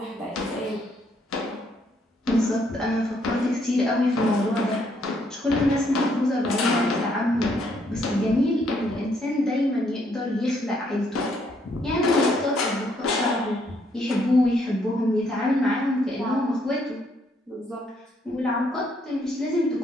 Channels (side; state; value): both; normal; correlation 0.71